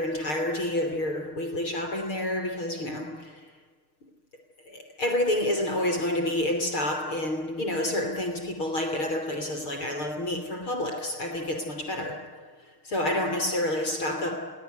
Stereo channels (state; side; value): late; right; 6.5 ms